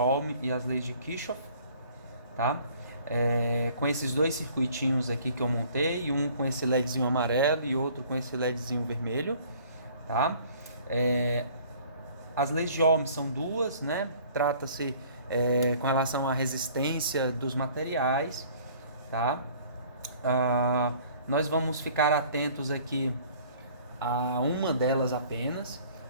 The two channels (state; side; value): inverted; both; correlation -0.54